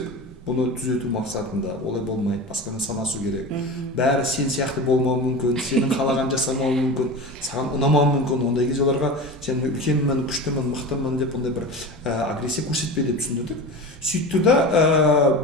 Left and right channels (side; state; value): both; normal; correlation 0.30